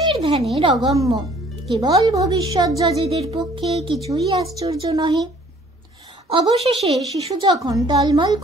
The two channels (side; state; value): both; normal; correlation 0.57